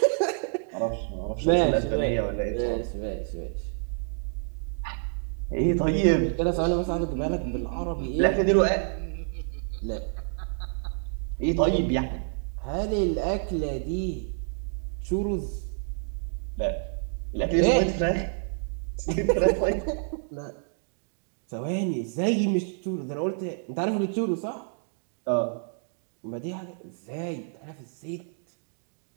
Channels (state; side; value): silent; left; digital silence